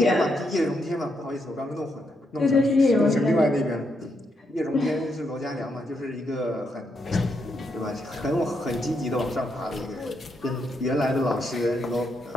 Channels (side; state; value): both; normal; correlation 0.79